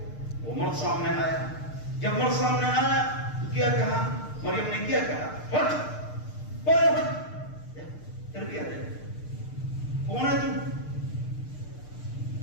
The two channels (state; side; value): late; right; 6.6 ms